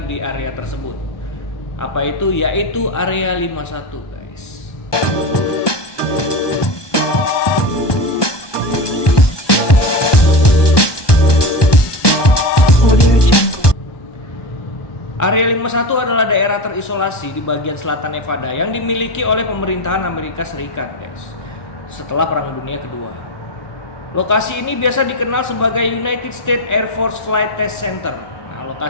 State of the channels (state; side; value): late; right; 1.2 ms